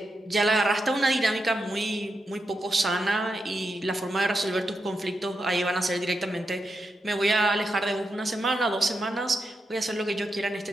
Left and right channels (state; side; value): normal; both; correlation 0.86